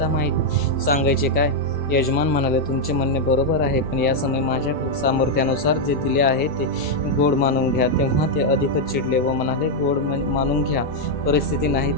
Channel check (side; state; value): both; normal; correlation -0.01